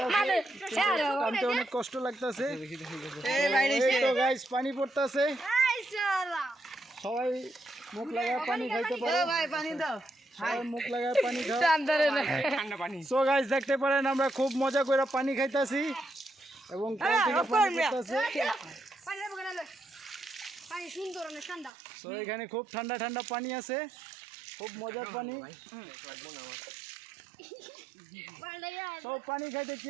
অনেক কষ্ট লাগতেছে তো গাইস। পানি পড়তেছে, সবাই মুখ লাগায় পানি খাইতে পারে, মুখ লাগায় পানি খায়। সো গাইস দেখতে পারেন আমরা খুব মজা করে পানি খাইতেছি এবং সো এখানে খুব ঠান্ডা ঠান্ডা পানি আছে, খুব মজার পানি। সব পানি খাইতে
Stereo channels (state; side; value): drops out; left; at 21.7 s